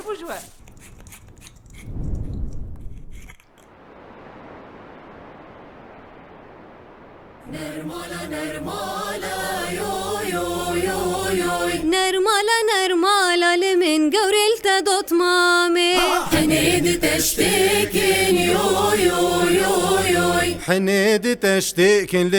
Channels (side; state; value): both; identical; correlation 1.00